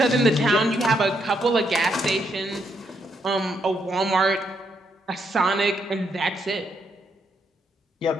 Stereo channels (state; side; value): normal; both; correlation 0.76